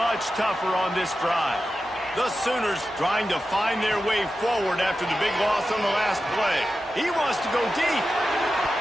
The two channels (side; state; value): both; normal; correlation 0.92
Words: tougher on this drive. The Sooners trying to find their way forward after the big loss on the last play. He wants to go deep.